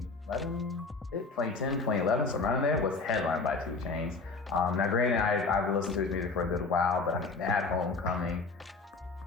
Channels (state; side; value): quieter; right; 4.1 dB